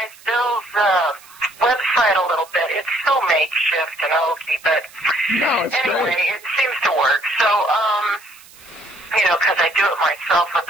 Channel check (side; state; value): right; noise; hiss, 23 dB below the sound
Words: Bill's website a little bit. It's so makeshift and hokey, but anyway, it seems to work. So, because I do it myself with